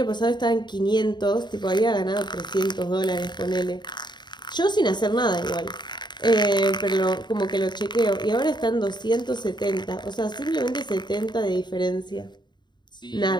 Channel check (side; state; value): right; late; 0.21 ms